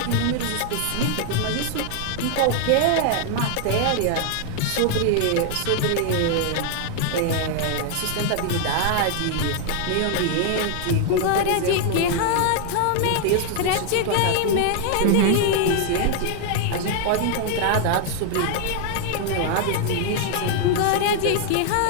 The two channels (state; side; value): different; both; correlation 0.00